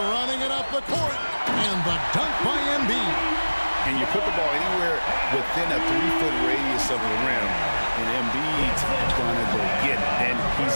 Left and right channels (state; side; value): inverted; both; correlation -1.00